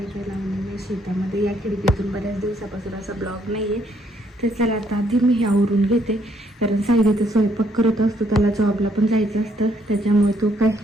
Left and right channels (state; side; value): normal; both; correlation 0.69